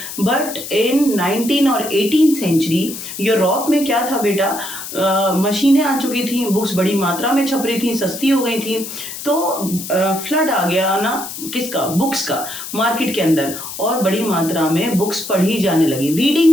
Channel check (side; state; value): left; noise; hiss, 9 dB below the sound